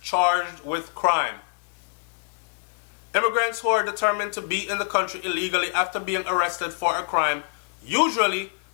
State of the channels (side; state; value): right; silent; digital silence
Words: charged with crime. Immigrants who are determined to be in the country illegally after being arrested for a crime usually